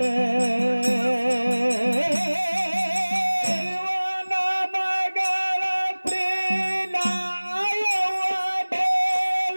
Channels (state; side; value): inverted; both; correlation -1.00